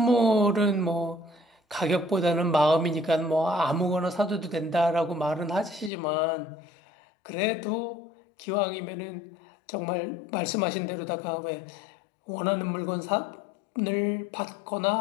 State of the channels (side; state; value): right; drops out; at 5.9 s